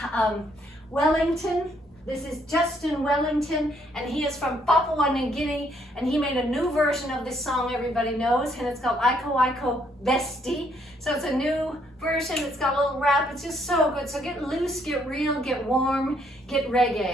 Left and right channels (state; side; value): normal; both; correlation 0.70